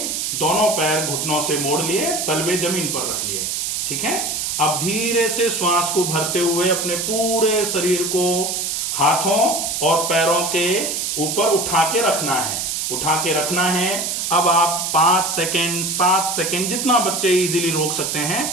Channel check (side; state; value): right; noise; hiss, 1 dB below the sound